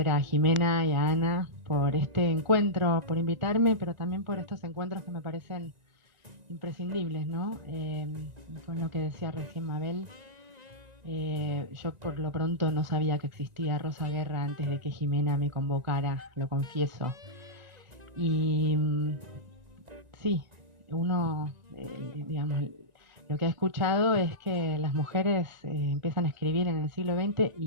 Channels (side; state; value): left; late; 1.9 ms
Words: a Jimena y a Ana por este encuentro, por invitarme, pero también por estos encuentros que me parecen imprescindibles, ¿no? Con lo que decía recién Mabel, yo por lo pronto no sabía que existía Rosa Guerra antes de que Jimena me convocara, lo confieso. Y sí, uno, digamos, lo que ha escuchado es que las mujeres empiezan a escribir en el siglo XX